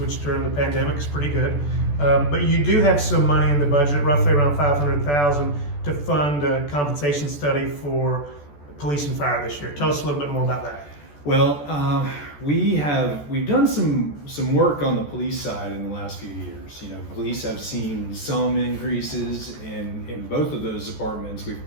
during the pandemic is pretty good. But you do have some money in the budget, roughly around $500,000, to fund a compensation study for police and fire this year. Tell us a little bit more about that. Well, we've done some work on the police side in the last few years. Police have seen some increases in both of those departments. We've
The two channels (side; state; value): right; late; 14 ms